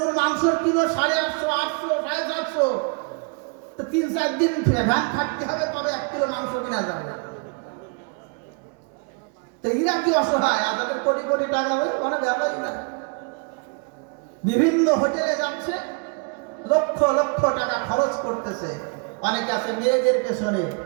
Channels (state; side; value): quieter; left; 35.8 dB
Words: মাংসের কিলো 850, 800, 750, তো 3-4 দিন ভ্যান খাটতে হবে তবে 1 কিলো মাংস কিনা যাবে। তো এরা কি অসহায়? আর তাদের কোটি কোটি টাকা হবে, কোনো ব্যাপারই না। বিভিন্ন হোটেলে যাচ্ছে, লক্ষ লক্ষ টাকা খরচ করতেছে। অনেকে আছে মেয়েদের পেছনে,